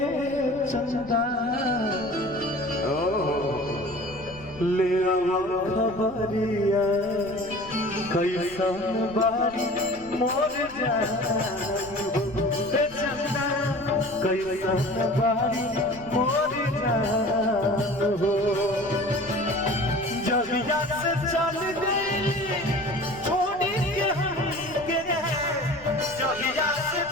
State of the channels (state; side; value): noise; left; rumble, 20 dB below the sound